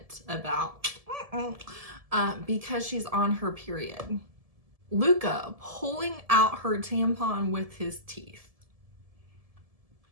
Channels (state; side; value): late; left; 1.7 ms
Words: about because she's on her period. Luca pulling out her tampon with his teeth.